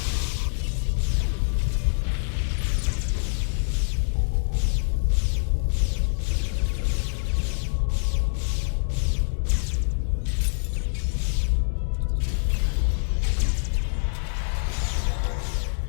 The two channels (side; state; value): right; silent; 62 dB below the other